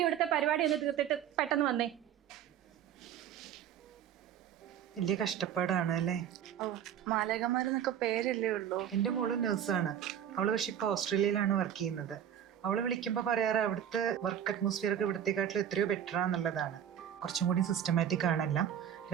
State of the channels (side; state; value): left; quieter; 9.7 dB